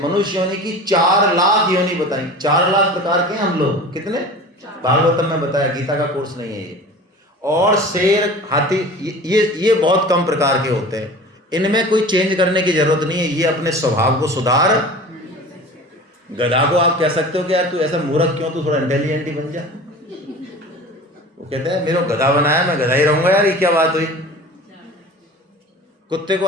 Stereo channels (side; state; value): both; normal; correlation 0.38